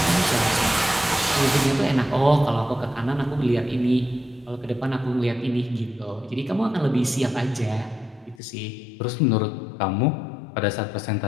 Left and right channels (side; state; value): right; drops out; at 8.4 s